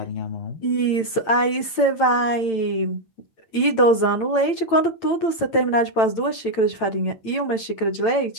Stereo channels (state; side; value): late; right; 8.9 ms